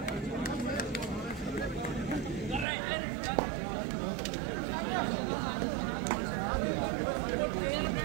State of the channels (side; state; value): left; drops out; at 2.7 s